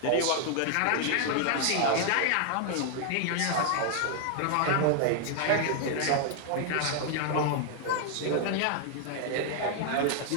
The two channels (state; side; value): different; both; correlation -0.01